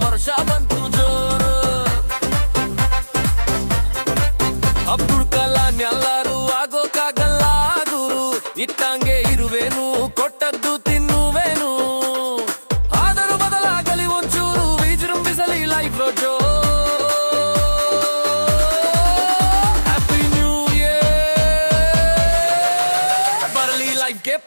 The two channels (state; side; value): inverted; both; correlation -1.00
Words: ವರ್ಷ ಬಂತು ಜೋರು. ಅಬ್ದುಲ್ ಕಲಾಂ ಎಲ್ಲರೂ ಆಗೋಕ್ಕಾಗಲ್ಲ ಗುರು, ಇಟ್ಟಂಗೆ ಇರುವೇನು ಕೊಟ್ಟದ್ದು ತಿನ್ನುವೇನು. ಆದರೂ ಬದಲಾಗಲಿ ಒಂಚೂರು, ವಿಜೃಂಭಿಸಲಿ ಲೈಫ್ ಜೋ. ಹ್ಯಾಪಿ ನ್ಯೂ ಇಯರ್, ಬರಲಿ ಲೈಫ್ಗೆ